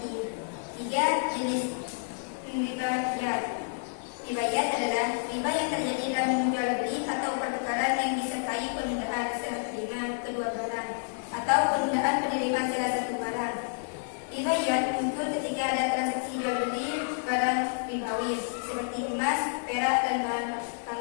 ketiga, jenis ribayat. Ribayat adalah riba yang terjadi dalam jual beli atau pertukaran yang disertai penundaan serah terima kedua barang atau penundaan penerimaan salah satu barang. Ribayat muncul ketika ada transaksi jual beli barang ribawi seperti emas, perak, dan bahan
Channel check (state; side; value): silent; right; 58 dB below the other